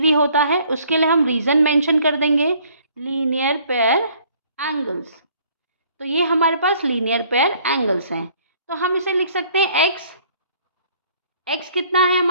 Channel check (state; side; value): inverted; both; correlation -0.59